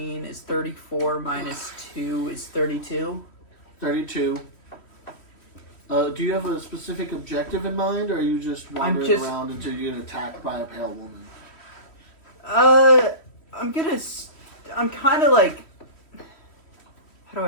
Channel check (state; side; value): late; right; 3.1 ms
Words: is 34 minus 2 is 32. 32. Do you have a specific objective in mind, or are you just wandering around until you get attacked by a pale woman? I'm kind of like, how do